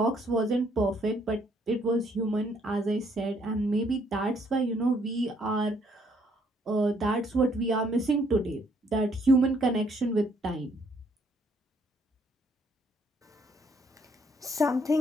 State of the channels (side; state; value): both; normal; correlation 0.68